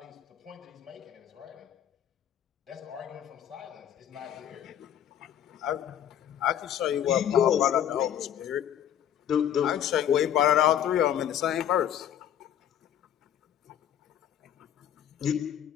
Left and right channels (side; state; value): right; quieter; 10.2 dB